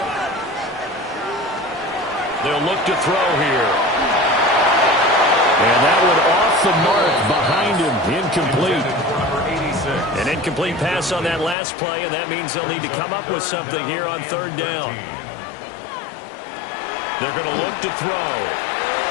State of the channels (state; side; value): drops out; right; at 11.6 s